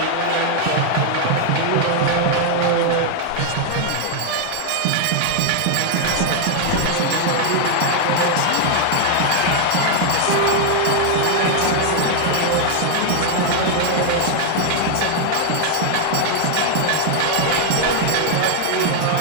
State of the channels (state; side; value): different; both; correlation 0.00